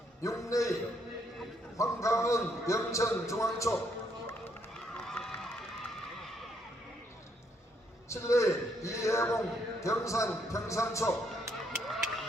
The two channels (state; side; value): normal; both; correlation 0.72